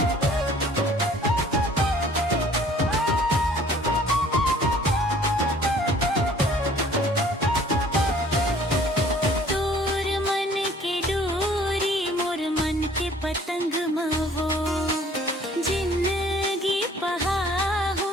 पतंग मवो जिंदगी पहा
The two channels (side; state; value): both; normal; correlation 0.54